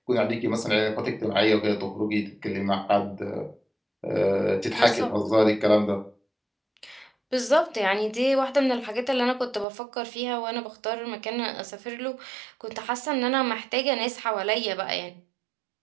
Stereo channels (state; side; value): drops out; left; at 9.7 s